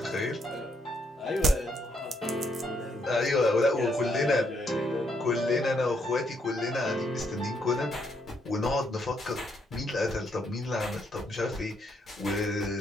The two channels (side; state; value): both; normal; correlation 0.74